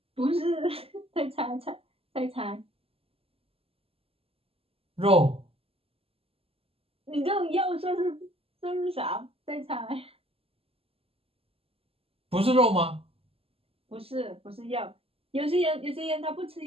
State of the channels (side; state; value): left; late; 0.28 ms